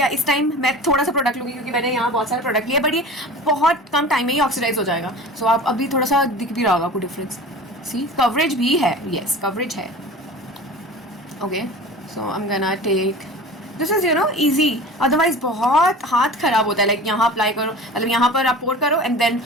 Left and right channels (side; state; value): both; normal; correlation 0.37